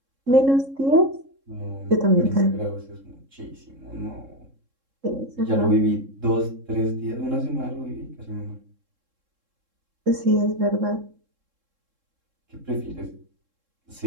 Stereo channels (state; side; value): late; left; 3.7 ms